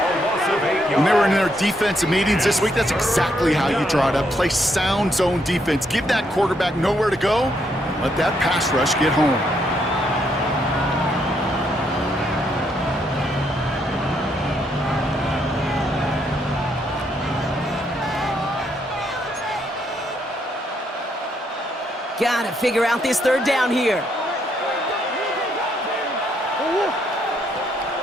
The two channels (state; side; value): normal; both; correlation 0.75